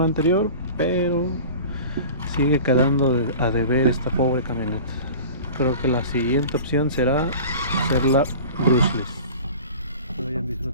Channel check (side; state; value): both; inverted; correlation -0.38